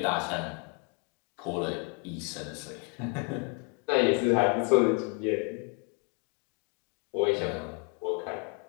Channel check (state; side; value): quieter; right; 36.0 dB